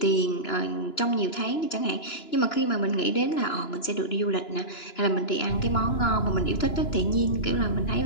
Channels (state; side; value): late; right; 2.9 ms